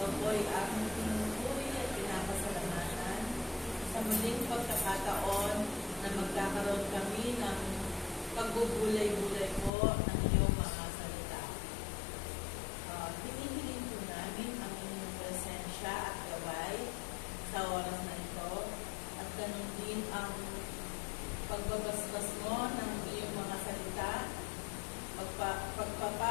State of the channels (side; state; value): right; drops out; at 9.7 s